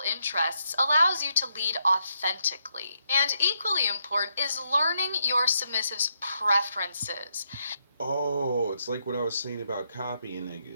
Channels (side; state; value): both; inverted; correlation -0.79